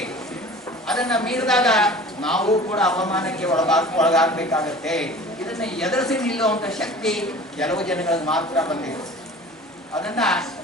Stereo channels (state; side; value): normal; both; correlation 0.42